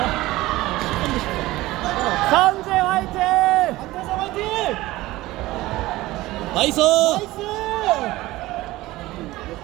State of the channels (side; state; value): left; quieter; 18.1 dB